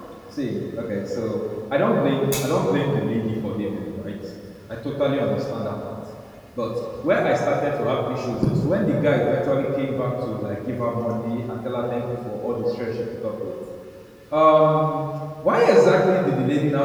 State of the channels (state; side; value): identical; both; correlation 1.00